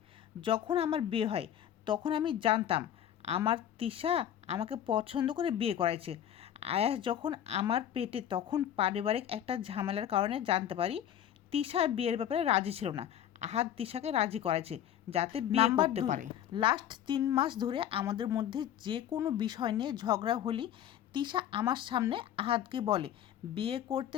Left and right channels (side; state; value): right; quieter; 10.5 dB